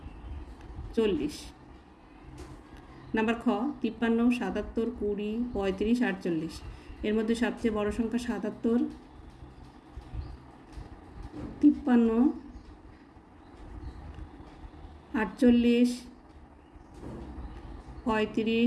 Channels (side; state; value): both; identical; correlation 1.00